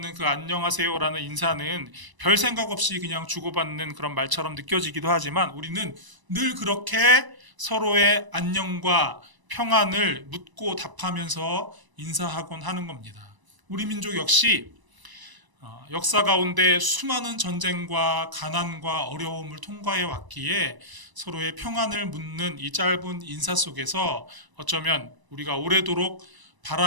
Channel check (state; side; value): late; left; 1.0 ms